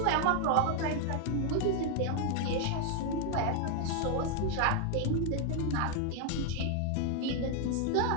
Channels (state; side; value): different; both; correlation 0.00